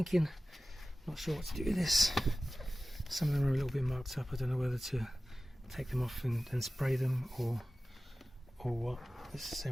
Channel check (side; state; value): both; normal; correlation 0.96